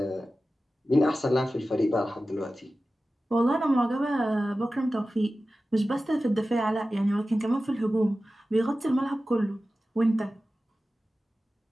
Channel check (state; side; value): normal; both; correlation 0.95